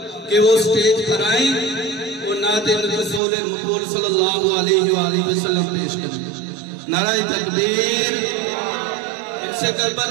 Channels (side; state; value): left; drops out; at 3.2 s